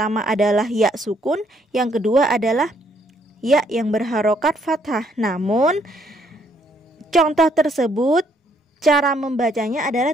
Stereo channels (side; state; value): both; normal; correlation 0.69